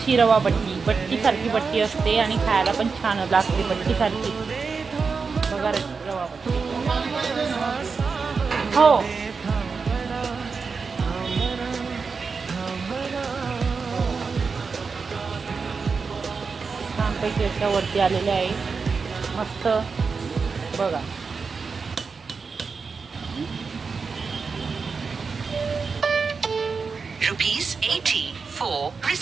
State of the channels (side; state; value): left; quieter; 5.0 dB